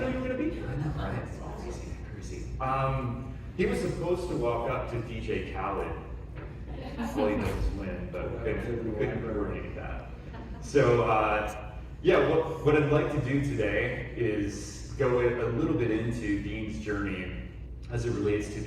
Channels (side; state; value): both; identical; correlation 1.00